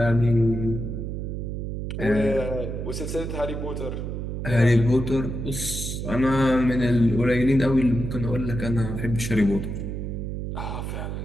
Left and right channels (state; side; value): noise; right; hum, 4 dB below the sound